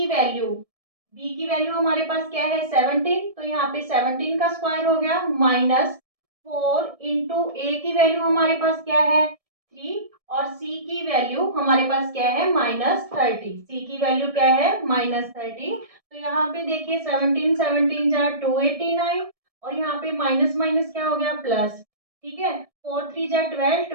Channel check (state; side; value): late; left; 1.7 ms